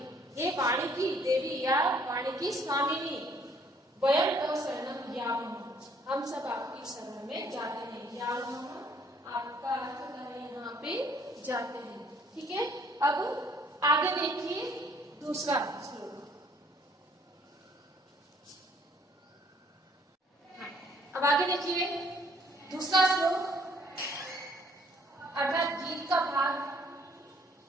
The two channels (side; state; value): both; normal; correlation 0.62